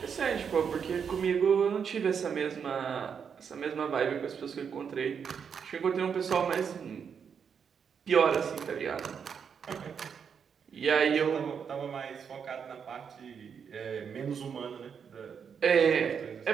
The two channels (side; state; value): left; quieter; 6.9 dB